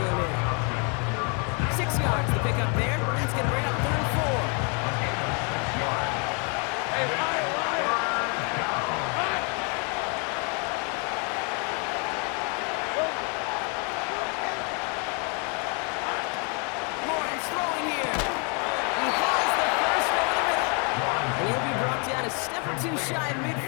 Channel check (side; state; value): right; quieter; 35.6 dB